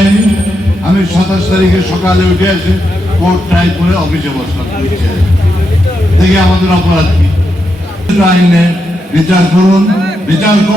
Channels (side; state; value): both; normal; correlation 0.84